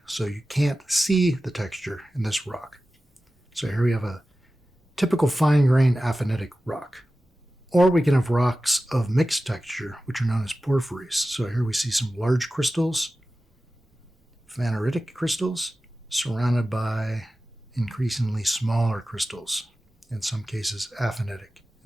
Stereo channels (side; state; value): both; normal; correlation 0.95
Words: so you can't see the texture in this rock. So here we have a typical fine-grained aphanitic rock. Or we can have rocks of mixed texture, which are known as porphyries. So here we see some large crystals, phaneritic crystals, surrounded by increasingly smaller crystals, in some cases aphanitic.